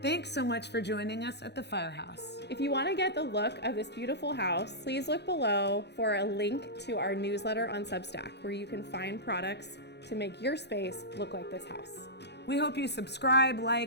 Thanks so much for joining us at the Firehouse. If you want to get the look of this beautiful house, please look below for a link to our newsletter on Substack, where you can find products to make your space look like this house. We hope you subscribe,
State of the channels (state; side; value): late; right; 0.49 ms